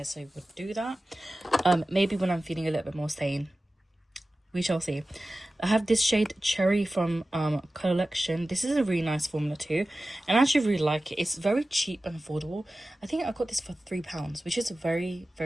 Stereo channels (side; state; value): both; normal; correlation 0.96